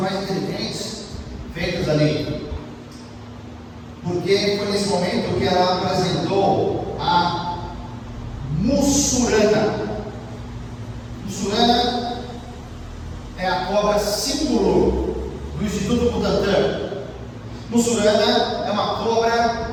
mais inteligentes feitas ali. Porque foi nesse momento que ela apresentou a mussurana. Mussurana é a cobra símbolo do Instituto Butantan. Mussurana é uma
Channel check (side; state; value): both; identical; correlation 1.00